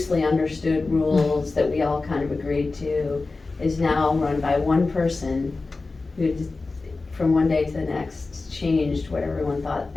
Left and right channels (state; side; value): quieter; right; 3.7 dB